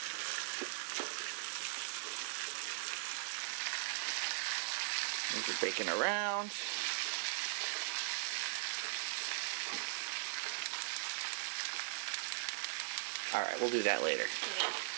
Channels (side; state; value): left; silent; 51 dB below the other